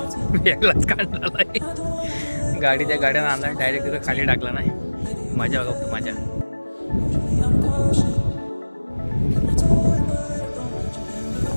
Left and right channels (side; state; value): both; inverted; correlation -1.00